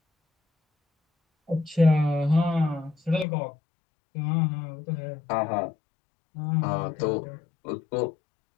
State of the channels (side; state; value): right; drops out; at 3.2 s